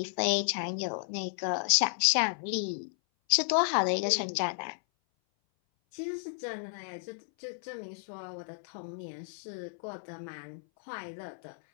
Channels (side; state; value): right; silent; 56 dB below the other